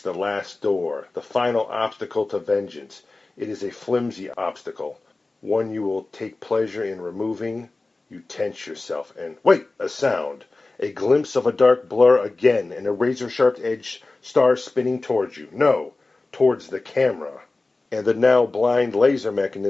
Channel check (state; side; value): quieter; right; 3.3 dB